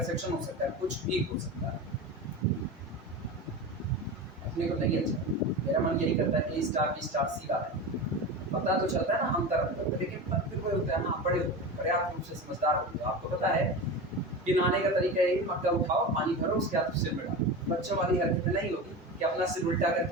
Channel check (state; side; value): normal; both; correlation 0.26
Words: हो सकता है, कुछ भी हो सकता है, अपने को नहीं अच्छा, मेरा मन यही करता है कि स्टार बी स्टार सी वाला है, पता तो चलता है ना हम तरफ, लेकिन फिर कोई होता है ना, बड़े पर्याप्त रूप से समझदार होते हो, आपको पता है कि नहाने का तरीका है, मग्गा उठाओ, पानी भरो, उसके बाद सिर में डालो, बच्चों वाली हरकत नहीं होगी कि अपना सिर उल्टा